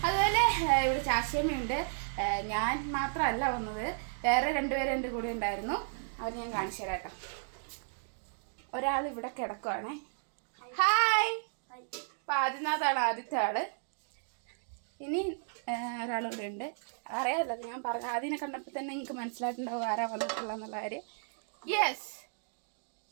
അതുപോലെ ഇവിടെ ചാച്ചിയമ്മയുണ്ട്. ഞാൻ മാത്രമല്ല വന്നത്, വേറെ രണ്ടുപേരും എൻ്റെ കൂടെ ഉണ്ടായിരുന്നു. അവർ ഞാൻ കാണിച്ചു തരാം കേട്ടോ. ഒരാൾ ഇവിടെ കിടക്കുവാണേ. ഹായ്. അപ്പോൾ ആദിനാഥാണ് ആദ്യത്തെ ആള്. ഇനി ഒരാളിവിടെ ഉണ്ട്. അറിയാമല്ലോ, ഞാൻ പറഞ്ഞു ആദ്യനെ കണ്ടപ്പോൾ തന്നെ നിങ്ങൾക്ക് മനസ്സിലായിട്ടുണ്ടാവും ആരാ വന്നിട്ടുള്ളതെന്നുള്ള കാര്യം. യെസ്,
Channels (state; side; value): silent; left; digital silence